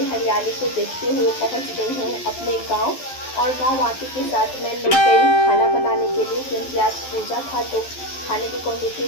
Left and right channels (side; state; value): right; late; 12 ms